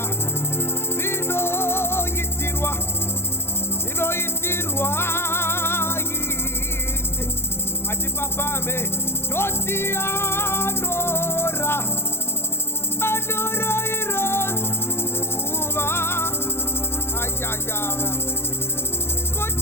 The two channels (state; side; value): late; right; 0.12 ms